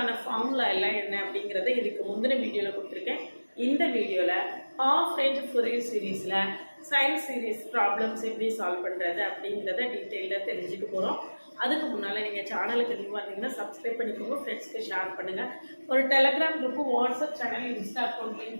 ஃபார்முலா எல்லாம் என்ன அப்படிங்கிறத இதுக்கு முந்தின வீடியோவில் கொடுத்துருக்கேன். இந்த வீடியோவில் ஹாஃப் ரேஞ்ச் ஃபொரியர் சீரீஸில் சயின்ஸ் சீரீஸ் ப்ராப்ளம்ஸ் எப்படி சால்வ் பண்ணுறது அப்படிங்கிறத டீட்டெயிலாக தெரிஞ்சுக்க போகிறோம். அதுக்கு முன்னால் நீங்கள் சேனலுக்கு நியூவாக இருந்தீங்கன்னா சப்ஸ்கிரைப் பண்ணிக்கோங்க, ஃப்ரெண்ட்ஸ்க்கு ஷேர் பண்ணுங்கள். ஒரு Telegram group, WhatsApp channel, Insta account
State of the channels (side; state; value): both; inverted; correlation -1.00